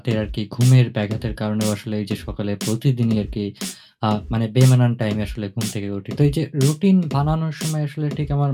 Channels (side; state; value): both; identical; correlation 1.00